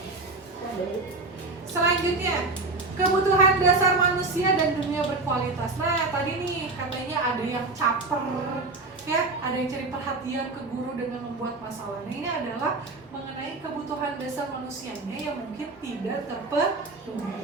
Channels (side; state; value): left; quieter; 3.5 dB